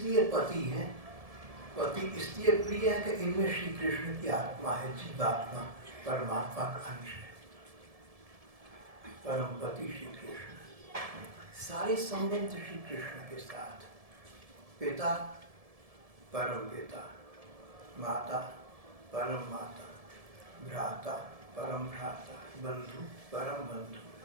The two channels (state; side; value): late; left; 1.7 ms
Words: पति हैं, पति इसलिए प्रिय है कि इनमें श्री कृष्ण की आत्मा है, जीवात्मा, परमात्मा का अंश है। परम पति श्री कृष्ण, सारे संबंध श्री कृष्ण के साथ। पिता परम पिता, माता परम माता, भ्राता परम भ्राता, बंधु परम बंधु,